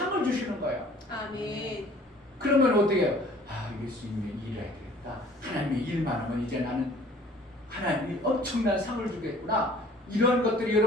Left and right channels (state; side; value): normal; both; correlation 0.52